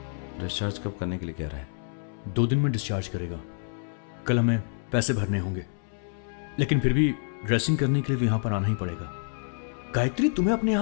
डिस्चार्ज कब करने के लिए कह रहा है? 2 दिन में डिस्चार्ज करेगा। कल हमें पैसे भरने होंगे, लेकिन फिर भी ड्रेसिंग करने के लिए तो यहां पर आना ही पड़ेगा। गायत्री, तुम्हें अपने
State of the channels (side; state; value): right; silent; 59 dB below the other